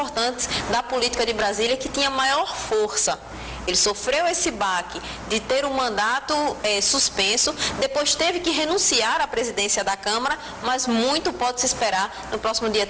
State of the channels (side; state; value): both; identical; correlation 1.00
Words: da política de Brasília, que tinha maior força. Ele sofreu esse baque de ter um mandato suspenso, depois teve que renunciar à presidência da Câmara, mas muito pode se esperar no próximo dia